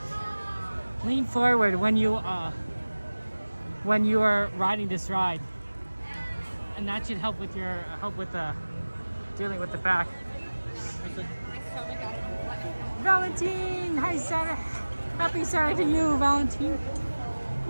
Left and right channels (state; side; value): inverted; both; correlation -1.00